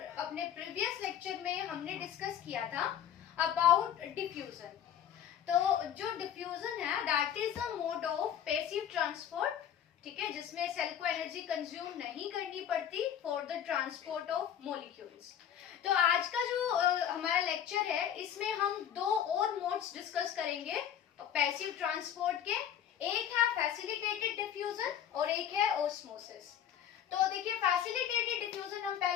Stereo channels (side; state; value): right; quieter; 9.7 dB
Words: अपने प्रीवियस लेक्चर में हमने डिस्कस किया था अबाउट डिफ्यूजन। तो जो डिफ्यूजन है that is a mode of passive transport, ठीक है, जिसमें सेल को एनर्जी कंज्यूम नहीं करनी पड़ती for the transport of molecules. तो आज का जो हमारा लेक्चर है इसमें हम दो और मोड्स डिस्कस करेंगे पैसिव ट्रांसपोर्ट के। एक है फैसिलिटेटेड डिफ्यूजन और एक है ऑस्मोसिस। तो देखिए, फैसिलिटेटेड डिफ्यूजन हम